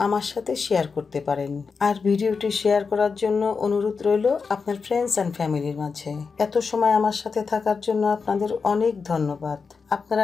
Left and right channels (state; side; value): quieter; right; 5.1 dB